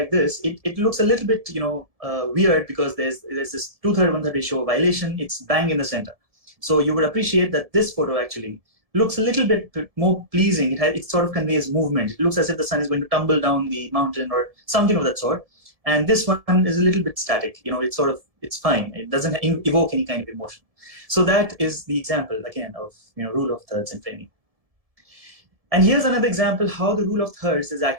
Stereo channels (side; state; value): left; late; 1.7 ms